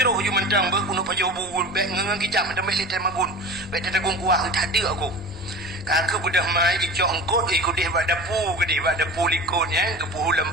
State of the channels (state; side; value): normal; both; correlation 0.35